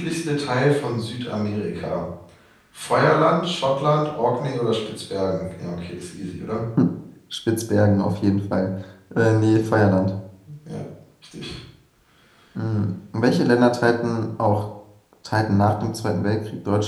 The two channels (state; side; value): identical; both; correlation 1.00